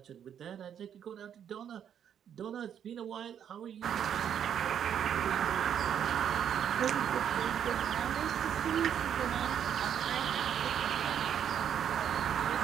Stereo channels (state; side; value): quieter; left; 8.9 dB